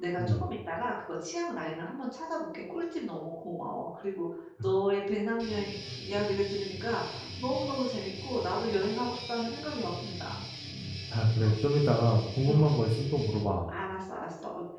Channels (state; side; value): identical; both; correlation 1.00